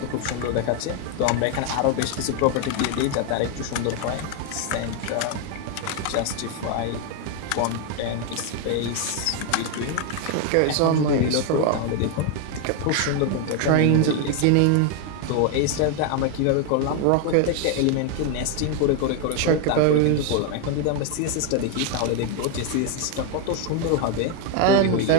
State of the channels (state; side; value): different; both; correlation 0.01